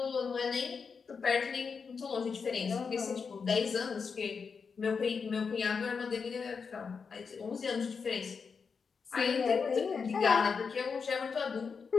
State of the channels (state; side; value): quieter; right; 5.6 dB